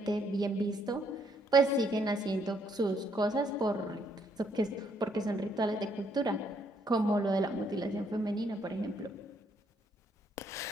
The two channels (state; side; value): normal; both; correlation 0.71